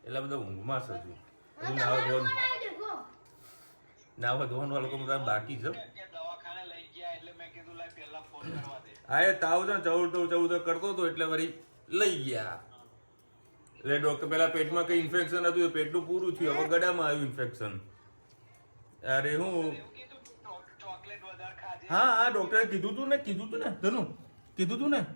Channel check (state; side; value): inverted; both; correlation -1.00